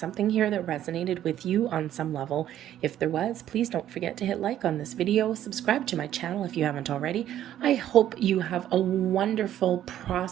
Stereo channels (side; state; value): left; quieter; 11.7 dB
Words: here that resonated with you on some level. If there was, please don't forget to hit like on this video, subscribe to my channel if you haven't already. I hope you have a wonderful,